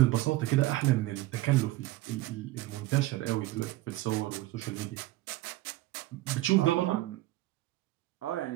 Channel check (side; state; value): left; quieter; 17.5 dB